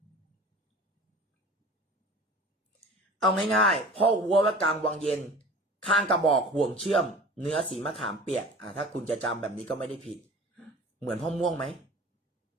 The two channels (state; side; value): normal; both; correlation 0.41